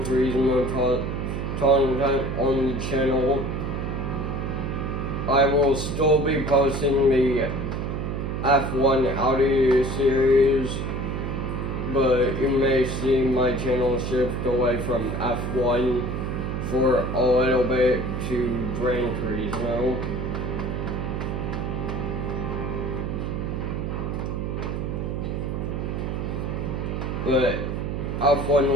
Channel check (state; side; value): noise; right; hum, 2 dB below the sound